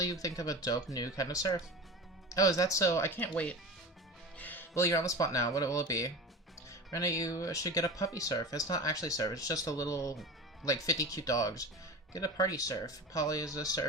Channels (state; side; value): normal; both; correlation 0.31